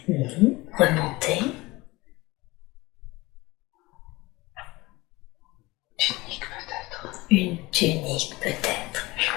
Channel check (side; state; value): right; quieter; 21.4 dB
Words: Remontez. Tunique peut-être. Une tunique peut-être. Je